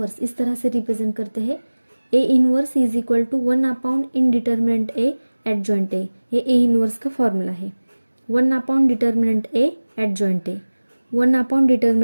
इस तरह से रिप्रेजेंट करते हैं। A inverse is equal to 1/n in determinant A adjoint A. ये ए इन्वर्स का फॉर्मूला है। 1/n determinant A adjoint A, 1/n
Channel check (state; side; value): inverted; both; correlation -1.00